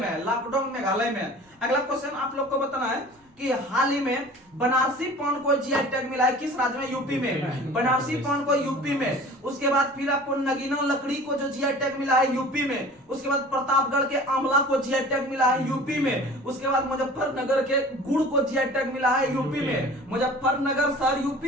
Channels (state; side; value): normal; both; correlation 0.43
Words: है, लाकडोंग मेघालय में। अगला क्वेश्चन आप लोग को बताना है कि हाल ही में बनारसी पान को जीआई टैग मिला है किस राज्य में? यूपी में। बनारसी पान को यूपी में। उसके बाद फिर आपको नगीना लकड़ी को जो जीआई टैग मिला है यूपी में। उसके बाद प्रतापगढ़ के आंवला को जीआई टैग मिला है यूपी में। उसके बाद मुजफ्फरनगर के गुड़ को जीआई टैग मिला है यूपी में। मुजफ्फरनगर शहर